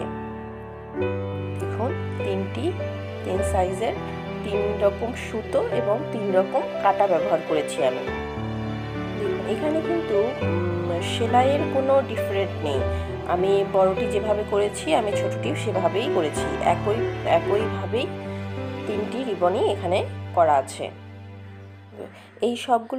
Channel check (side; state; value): both; identical; correlation 1.00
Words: দেখুন, তিন সাইজের 3 রকম সুতো এবং 3 রকম কাটা ব্যবহার করেছি আমি। দেখুন, এখানে কিন্তু সেলাইয়ের কোনো ডিফারেন্ট নেই। আমি বড়টি যেভাবে করেছি আমি ছোটটিও সেভাবেই করেছি। একইভাবেই 3টি রিবনই এখানে করা আছে। এই